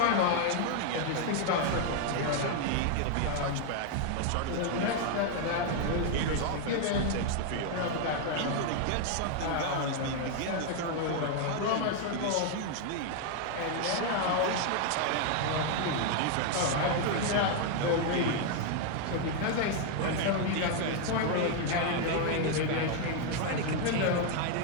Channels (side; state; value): both; different; correlation 0.00